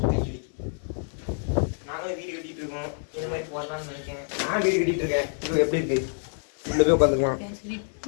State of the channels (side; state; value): right; silent; 60 dB below the other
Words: நாங்களும் வீடு கட்டிட்டு இருக்கோம். இது மாதிரி போடலாம்னு நினைக்கிறேன். நான் வீடு கட்டிட்டு இருக்கேன். இது எப்படி இருக்கு? உள்ள போய் உட்காந்துக்கலாம்.